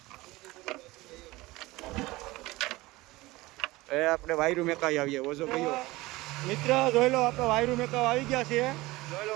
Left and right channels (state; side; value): quieter; left; 20.1 dB